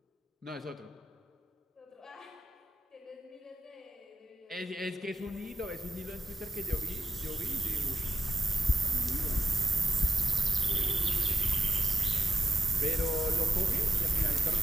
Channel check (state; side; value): normal; both; correlation 0.89